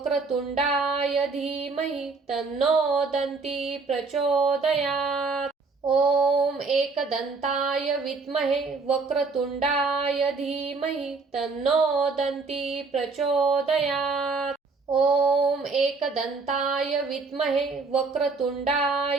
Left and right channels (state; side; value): quieter; left; 4.2 dB